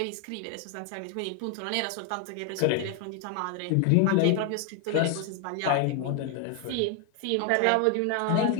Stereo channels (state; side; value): different; both; correlation 0.01